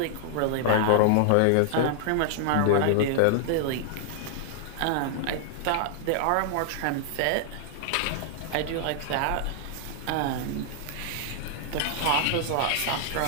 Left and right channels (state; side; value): different; both; correlation -0.01